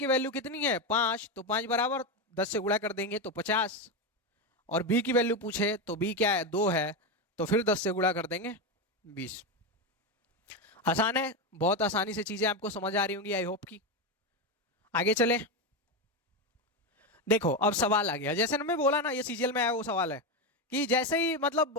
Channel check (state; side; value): normal; both; correlation 0.12